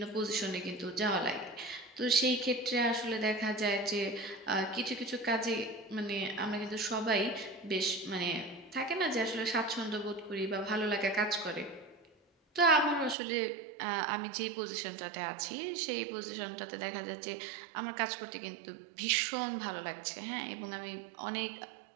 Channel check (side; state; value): left; drops out; at 13.2 s